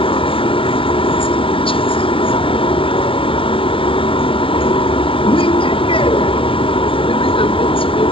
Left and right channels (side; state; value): right; late; 0.25 ms